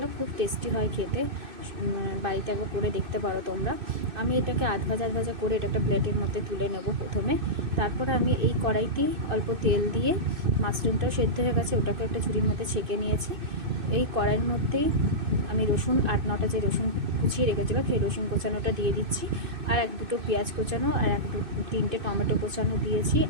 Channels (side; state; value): left; late; 2.6 ms